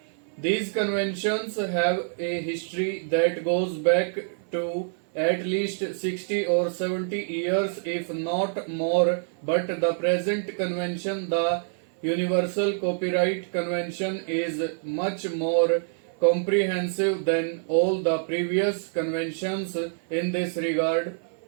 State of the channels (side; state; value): left; silent; 56 dB below the other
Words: These conventions have a history that goes back to at least 60 or 70 years, if not more, but the present convention, the Universal Copyright Convention, is much more comprehensive than all the previous conventions in this regard.